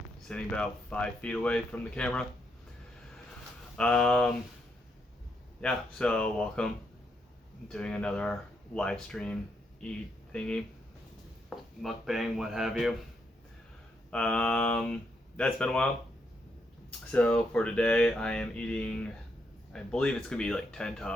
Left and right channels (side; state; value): both; normal; correlation 0.79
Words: sitting about 5 feet away from the camera. Yeah, so welcome. I'm doing another live stream eat thingy, mukbang, what have you. That's been a while. So for today, I am eating, I believe it's gonna be like 10